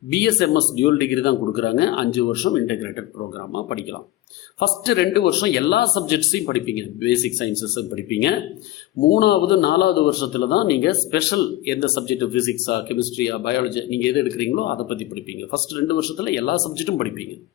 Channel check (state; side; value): quieter; right; 15.8 dB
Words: பிஎஸ்எம்எஸ் டியூல் டிகிரி தான் கொடுக்குறாங்க. 5 வருஷம் இன்டகிரேட்டட் ப்ரோக்ராமாக படிக்கலாம். ஃபஸ்ட்டு 2 வருஷம் எல்லா சப்ஜெக்ட்ஸையும் படிப்பீங்க, பேசிக் சயின்சஸும் படிப்பீங்க. 3வது 4வது வருஷத்தில் தான் நீங்கள் ஸ்பெஷல் எந்த சப்ஜெக்ட், ஃபிசிக்ஸா, கெமிஸ்ட்ரியா, பயாலஜி நீங்கள் எது எடுக்கிறீங்களோ அதை பற்றி படிப்பீங்க. ஃபஸ்ட்டு 2 வருஷத்தில் எல்லா சப்ஜெக்ட்டும் படிப்பீங்க.